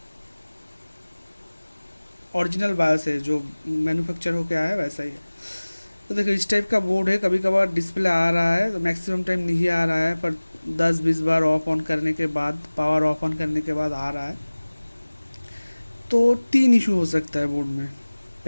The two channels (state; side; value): inverted; both; correlation -1.00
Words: ओरिजिनल बायोस है, जो मैन्युफैक्चर होके आया है वैसा ही है। तो देखो इस टाइप का बोर्ड है, कभी कभार डिस्प्ले आ रहा है तो मैक्सिमम टाइम नहीं आ रहा है, पर 10-20 बार ऑफ ऑन करने के बाद, पावर ऑफ ऑन करने के बाद आ रहा है। तो 3 इशू हो सकता है बोर्ड में।